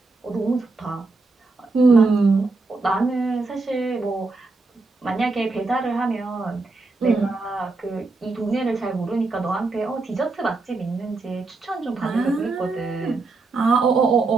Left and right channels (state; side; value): quieter; left; 3.6 dB